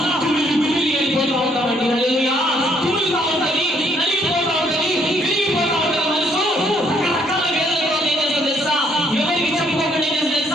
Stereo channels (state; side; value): normal; both; correlation 0.68